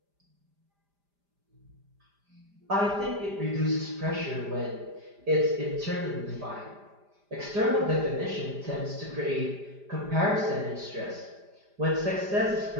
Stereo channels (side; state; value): left; late; 5.0 ms